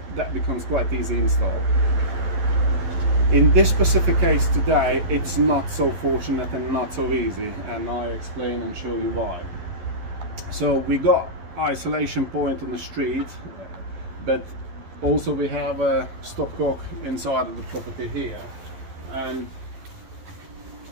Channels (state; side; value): late; left; 12 ms